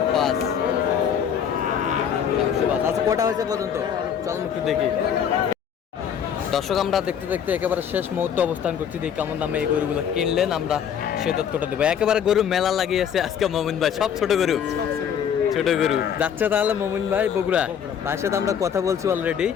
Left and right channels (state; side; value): quieter; right; 8.3 dB